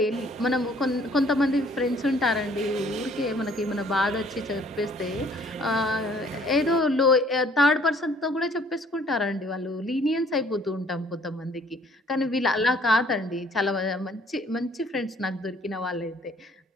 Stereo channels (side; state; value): both; normal; correlation 0.59